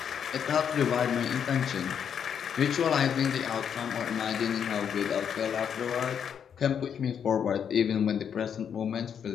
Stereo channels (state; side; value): quieter; right; 7.9 dB